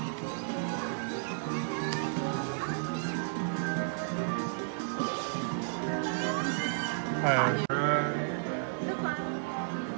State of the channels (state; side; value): silent; left; 56 dB below the other